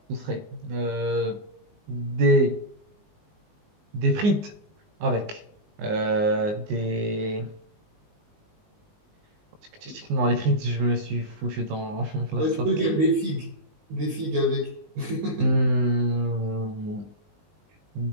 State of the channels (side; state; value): left; late; 19 ms